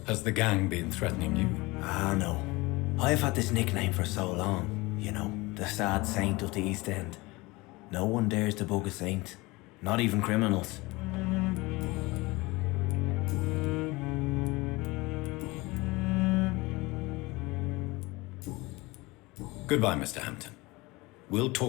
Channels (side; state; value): right; quieter; 22.7 dB